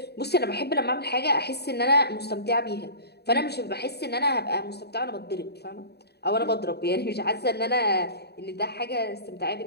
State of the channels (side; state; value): right; late; 0.48 ms